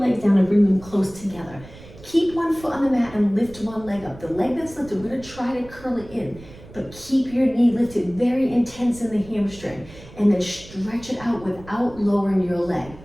down and bring them close together. Keep one foot on the mat and lift one leg up. The leg that's lifted, we're going to try to curl it in. But keep your knee lifted, very intense in the hamstring. And then stretch it out without lowering your leg.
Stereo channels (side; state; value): right; noise; rumble, 19 dB below the sound